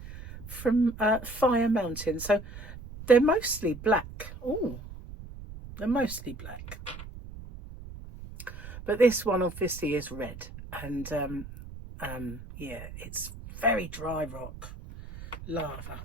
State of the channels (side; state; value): right; noise; rumble, 13 dB below the sound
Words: from Fire Mountain. So they're mostly black. Oh, they're mostly black. But this one obviously is red. And yeah, it's very dry rock lava.